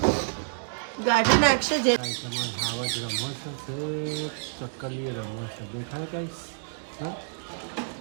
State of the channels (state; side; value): silent; left; digital silence